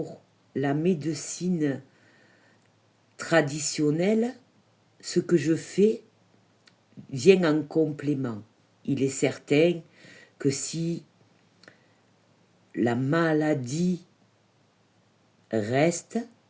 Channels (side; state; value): both; identical; correlation 1.00